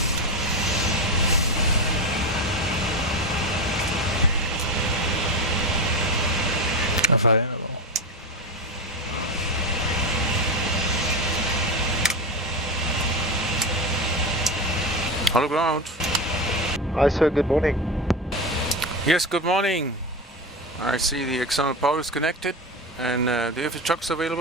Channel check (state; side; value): normal; both; correlation 0.19